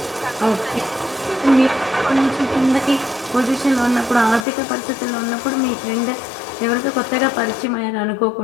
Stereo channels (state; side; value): drops out; right; at 4.5 s